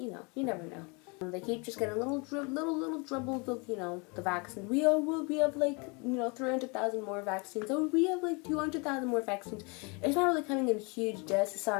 know, you never know. They keep just getting little dribbles of, you know, the vaccine. We have like, you know, 300,000 more vaccines. Oh, we have like 200,000 more vaccines. It's not really coming in huge doses, so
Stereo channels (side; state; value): right; quieter; 30.9 dB